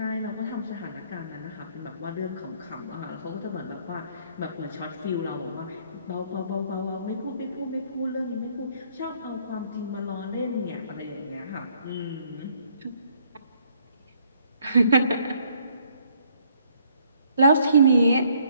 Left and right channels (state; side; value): inverted; both; correlation -0.65